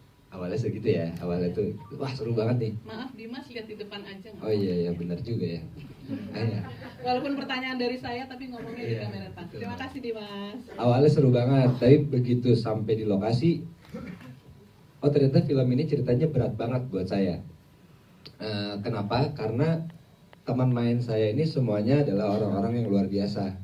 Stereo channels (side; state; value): both; identical; correlation 1.00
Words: Awalnya segitu ya, awalnya tuh, wah seru banget nih. Maaf Dimas, lihat di depan aja. Oh iya, benar juga ya. Walaupun pertanyaan dari saya, tapi ngomongnya di Iya, kamera depan. Terima kasih Dimas. Awalnya seru banget, tapi begitu sampai di lokasi, oh ternyata film ini ceritanya berat banget buat saya. Kenapa? Karena teman main saya ini semuanya adalah orang-orang yang luar biasa.